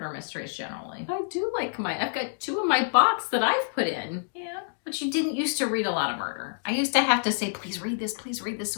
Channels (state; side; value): silent; right; digital silence